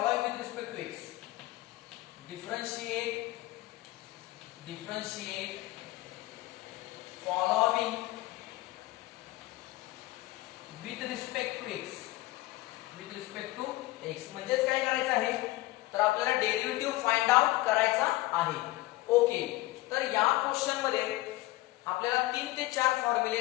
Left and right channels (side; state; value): right; quieter; 19.0 dB